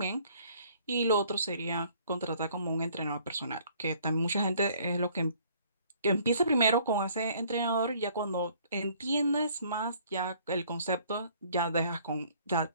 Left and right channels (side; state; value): both; inverted; correlation -0.59